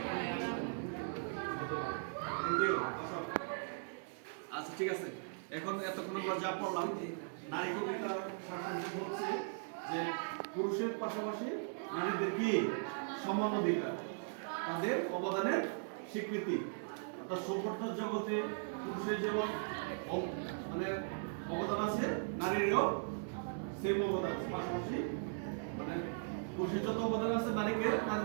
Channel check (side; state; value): left; silent; digital silence